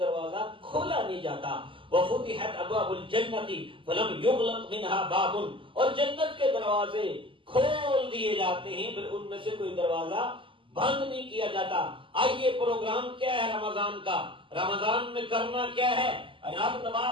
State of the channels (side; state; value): left; late; 0.25 ms